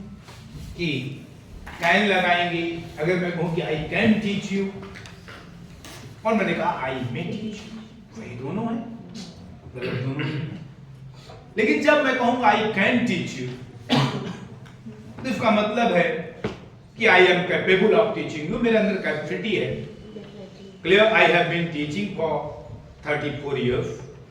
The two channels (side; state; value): both; identical; correlation 1.00